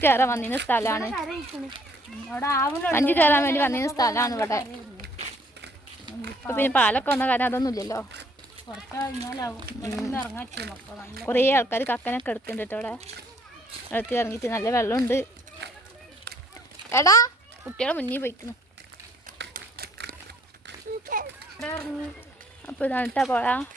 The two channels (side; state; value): both; normal; correlation 0.62